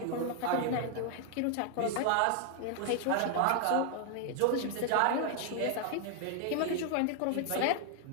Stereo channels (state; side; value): different; both; correlation 0.00